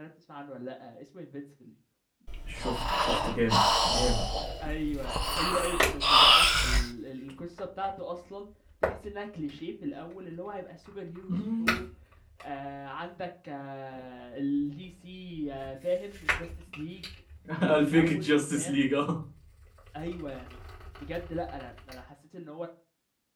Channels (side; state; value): both; identical; correlation 1.00